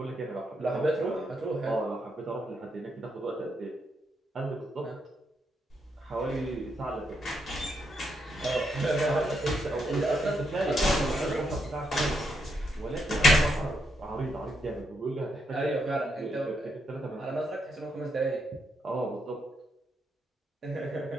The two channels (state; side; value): normal; both; correlation 0.79